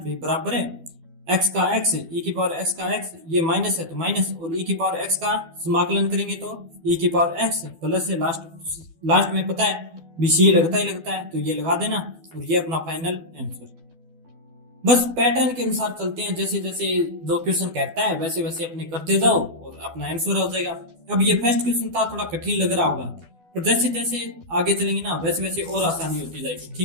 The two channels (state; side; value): late; left; 12 ms